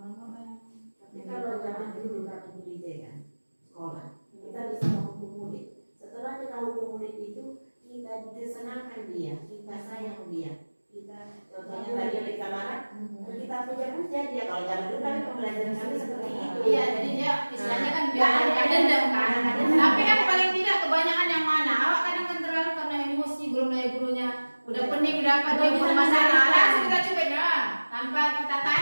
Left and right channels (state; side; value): inverted; both; correlation -1.00